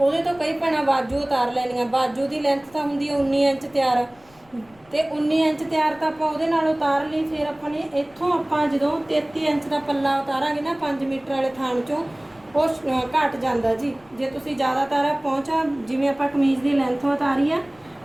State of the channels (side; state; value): left; noise; rumble, 29 dB below the sound